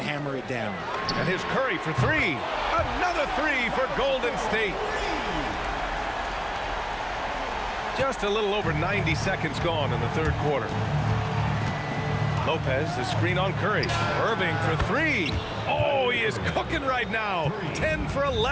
it down. And here's Curry for 3. Another 3 for Golden State. Just a little over 90 seconds gone in the third quarter. Lopez, the screen on Curry. Irving for 3. Oh, he is cooking right now. 10 for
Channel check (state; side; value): identical; both; correlation 1.00